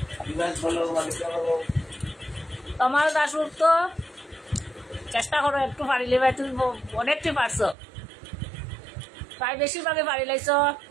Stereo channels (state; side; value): drops out; left; at 7.8 s